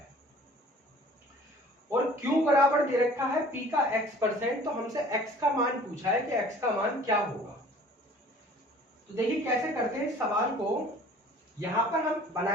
और Q बराबर दे रखा है P का X%। तो हमसे X का मान पूछा है कि X का मान क्या होगा। तो देखिए कैसे करते हैं इस सवाल को। यहां पर हम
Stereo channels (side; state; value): both; normal; correlation 0.49